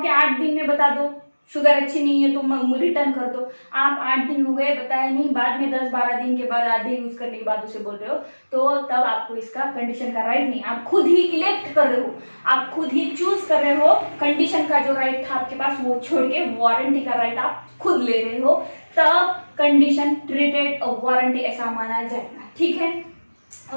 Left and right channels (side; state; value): both; inverted; correlation -1.00